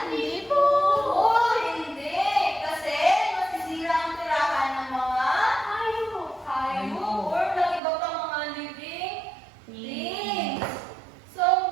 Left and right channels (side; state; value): left; drops out; at 7.8 s